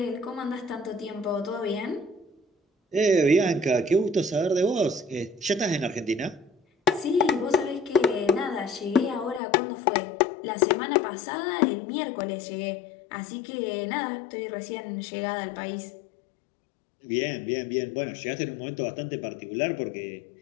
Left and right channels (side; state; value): right; drops out; at 9.4 s